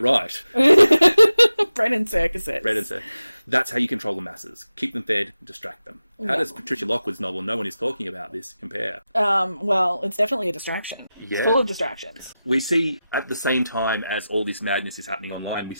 right. Bread and circuses. Bread and circuses. That's how you control the masses. Keep them fed, distract them. How does Patricia Lockwood's novel "No One Is Talking About This" compare? Well, it's definitely a distraction. Yeah. It's full of distractions. We see, at the same time as all this madness is happening online, we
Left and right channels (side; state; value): both; inverted; correlation -0.93